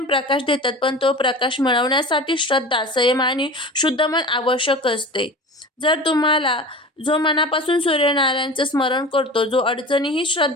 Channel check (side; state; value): both; normal; correlation 0.35